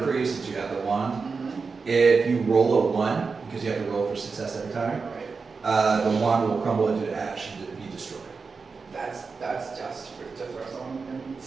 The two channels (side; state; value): left; quieter; 4.8 dB